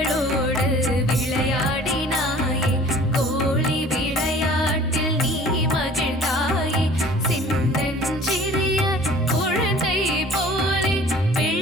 விளையாடினாயே கோழி விளையாட்டில் நீ மகிழ்ந்தாயே சின்னஞ்சிறிய குழந்தை போலே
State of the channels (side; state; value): both; normal; correlation 0.49